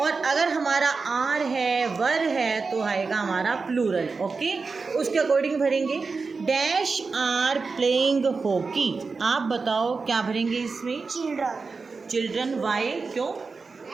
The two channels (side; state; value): left; quieter; 4.5 dB